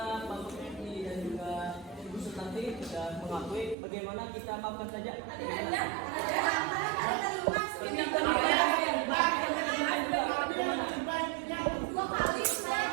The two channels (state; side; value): drops out; left; at 3.8 s